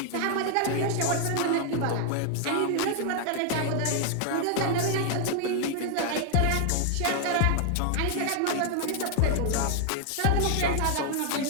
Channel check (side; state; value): both; different; correlation 0.00